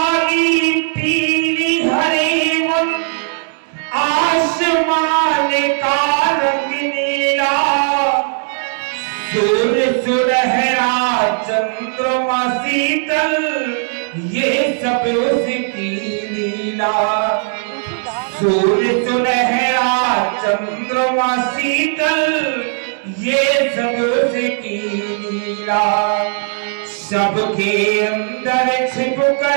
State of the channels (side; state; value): left; silent; 62 dB below the other